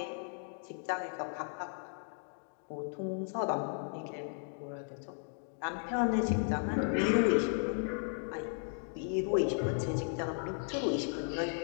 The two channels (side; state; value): right; silent; 54 dB below the other